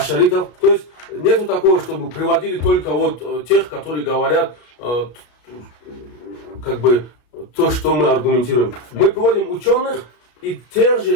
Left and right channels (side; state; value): right; late; 34 ms